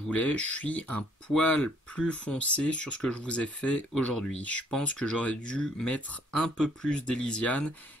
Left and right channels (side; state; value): both; normal; correlation 0.64